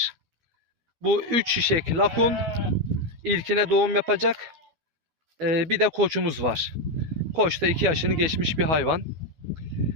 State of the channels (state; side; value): late; left; 12 ms